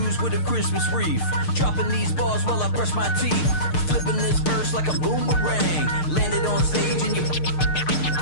with a Christmas wreath, dropping these bars while I brush my teeth. Flipping this verse like a boomerang, landed on stage in your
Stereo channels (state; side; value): late; right; 6.6 ms